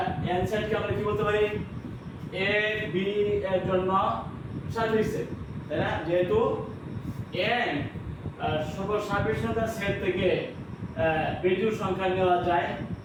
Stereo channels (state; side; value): identical; both; correlation 1.00